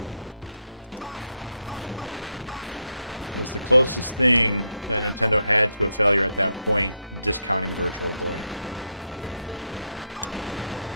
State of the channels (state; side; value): inverted; both; correlation -0.78